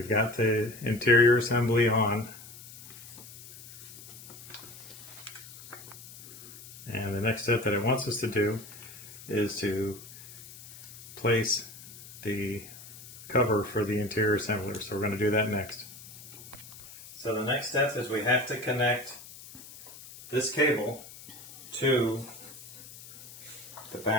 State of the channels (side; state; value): left; noise; hiss, 16 dB below the sound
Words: got the interior assembly on. And the next step that it wants us to do is to place the cover for the interior assembler. So we're going to do that next. So the next step is we have to connect this cable to the